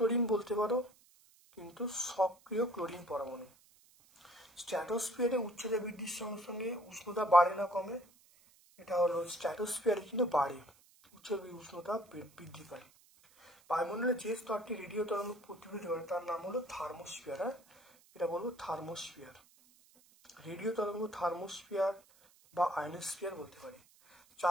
বলতে পারো, কিন্তু সক্রিয় ক্লোরিন পরমাণু। স্ট্র্যাটোস্ফিয়ারে উচ্চতা বৃদ্ধির সঙ্গে সঙ্গে উষ্ণতা বাড়ে না কমে? এটা হলো স্ট্র্যাটোস্ফিয়ারে কিন্তু বাড়ে, উচ্চতা বৃদ্ধি পায়। বায়ুমণ্ডলে যে স্তরটি রেডিও তরঙ্গ প্রতিফলিত করে তার নাম হলো থার্মোস্ফিয়ার। হ্যাঁ, এটা বলবো থার্মোস্ফিয়ার। রেডিও তরঙ্গ থার্মোস্ফিয়ার বা আয়নোস্ফিয়ার বলতে পারি।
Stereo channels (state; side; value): noise; right; hiss, 28 dB below the sound